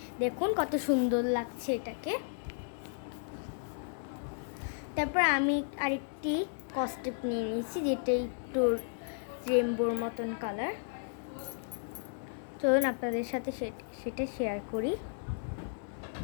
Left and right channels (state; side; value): silent; right; digital silence